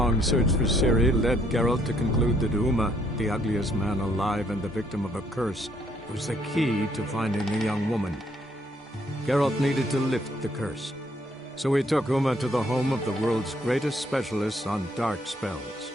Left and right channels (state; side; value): normal; both; correlation 0.69